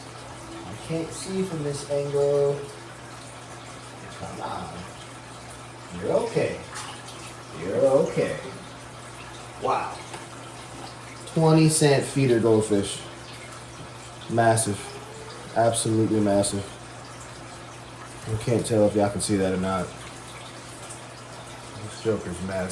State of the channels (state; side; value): identical; both; correlation 1.00